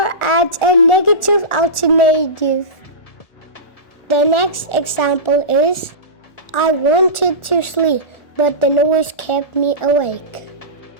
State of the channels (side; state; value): right; late; 1.4 ms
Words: adds a negative alternative. The next example is, I wanted to sleep, but the noise kept me awake.